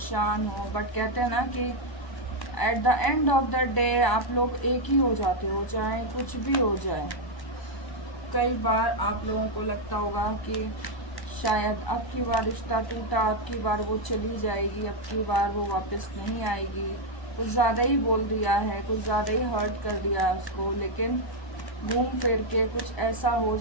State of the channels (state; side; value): late; right; 1.0 ms